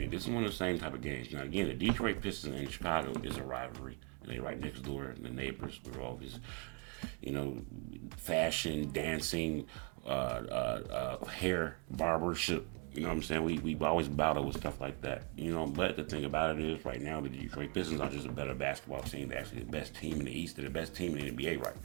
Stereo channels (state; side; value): quieter; left; 33.2 dB